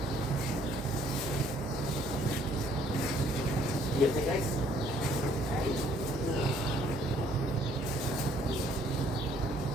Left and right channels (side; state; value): both; normal; correlation 0.63